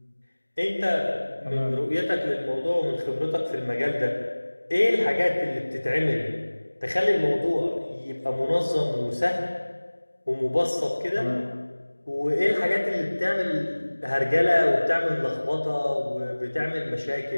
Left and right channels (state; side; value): inverted; both; correlation -1.00